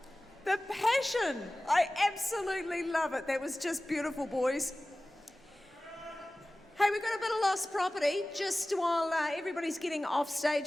The passion. I absolutely love it. That was just beautiful, boys. Hey, we've got a bit of lost property just while everybody's getting off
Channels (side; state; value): both; normal; correlation 0.97